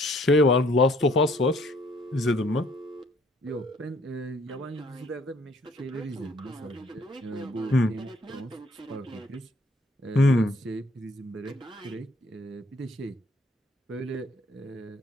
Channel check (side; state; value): both; normal; correlation 0.62